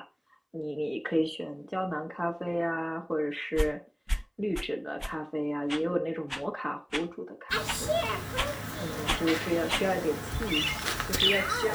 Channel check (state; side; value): identical; both; correlation 1.00